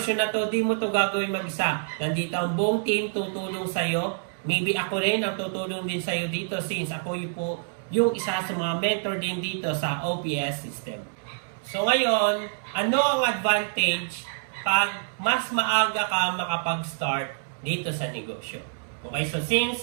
na to, di mo to gagawin mag-isa. Nandito ang buong team tutulong sa'yo. Maybe ako rin ang tutulong din sa'yo dito since ako yung isa sa mga mentor din dito sa OPS system. So ngayon, ano ang advantage pag mas maaga ka makapag-start dito sa negosyo? Okay, so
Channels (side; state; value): left; silent; 60 dB below the other